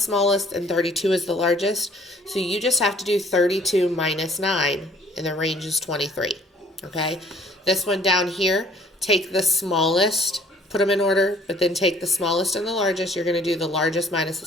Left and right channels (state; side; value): normal; both; correlation 0.57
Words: and 32 as the largest. So you just have to do 32 minus 9, and the range is 23. Okay, this one down here, take the smallest, put them in order, but then take the smallest and the largest. You're going to do the largest minus the